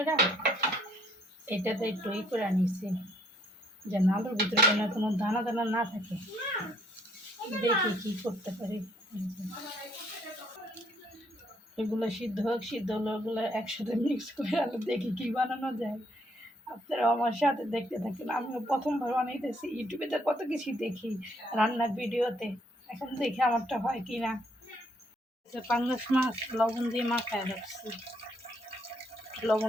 এটাতে একটু করে নিছি, যেন আলুর ভিতরে যেন কোনো দানা দানা না থাকে। দেখি কি করতে পারি। এগুলো সিদ্ধ হোক, সিদ্ধ হলো ওগুলো একসাথে মিক্স করে আলু দেখি কি বানানো যায়। আপনারা আমার সাথে দেখতে থাকেন। আমিও প্রথমবার বানাইতেছি, ইউটিউবে তো কত কিছু দেখি রান্নার ভিডিওতে, এখন দেখি আমারটা হয় কি না। পাঙ্গাস মাছ লবণ দিয়ে মাখায় রাখছি,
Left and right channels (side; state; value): both; normal; correlation 0.67